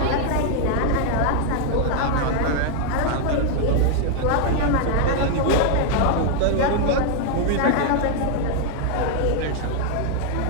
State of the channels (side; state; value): both; different; correlation 0.00